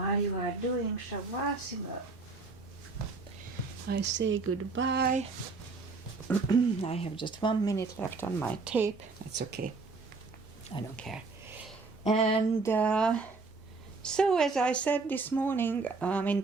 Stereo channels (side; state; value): left; quieter; 4.0 dB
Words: you are doing Shavasana, I say goodbye. I have just 1 minute left on my tape. That's okay. I don't care. And so as I said this morning,